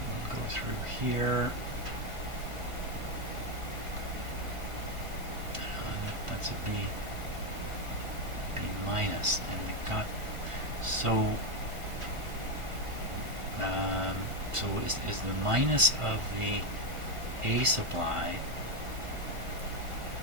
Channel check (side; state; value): left; late; 1.5 ms